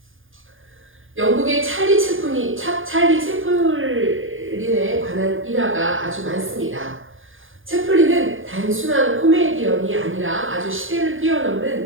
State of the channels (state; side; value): late; left; 0.58 ms